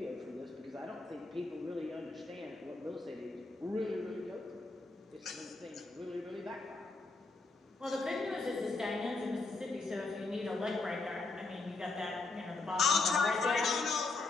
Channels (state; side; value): quieter; right; 3.6 dB